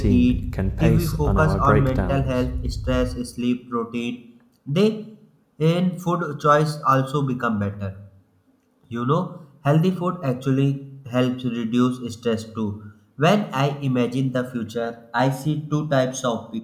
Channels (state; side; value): identical; both; correlation 1.00